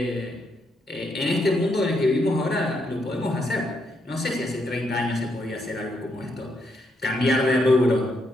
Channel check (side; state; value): both; normal; correlation 0.78